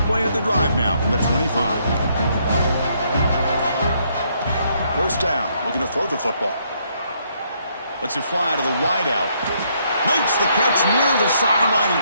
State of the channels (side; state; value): both; inverted; correlation -0.71